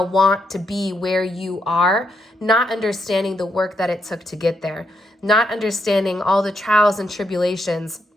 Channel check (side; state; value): both; normal; correlation 0.78